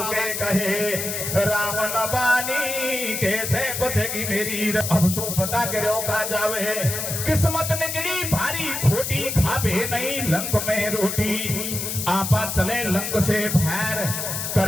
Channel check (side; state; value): left; noise; hiss, 4 dB below the sound